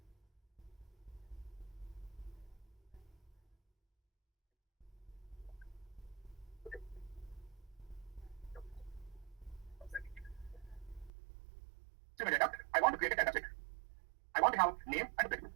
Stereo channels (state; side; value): drops out; left; at 11.1 s